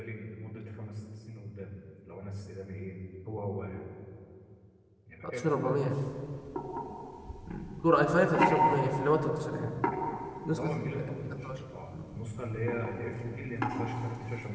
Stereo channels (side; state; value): both; identical; correlation 1.00